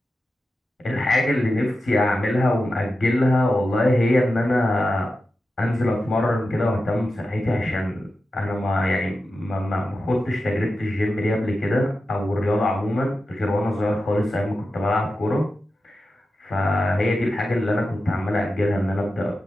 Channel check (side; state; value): both; normal; correlation 0.91